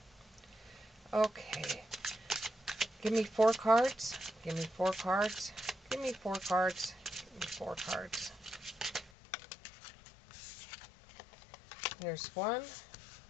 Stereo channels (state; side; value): drops out; right; at 9.1 s